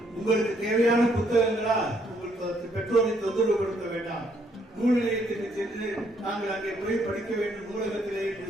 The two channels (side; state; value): both; normal; correlation 0.70